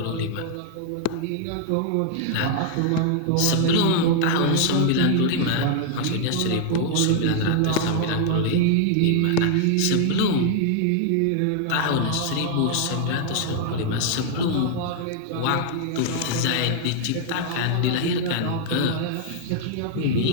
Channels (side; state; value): both; different; correlation 0.00